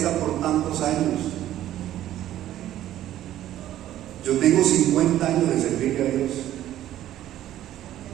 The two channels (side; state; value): left; quieter; 12.9 dB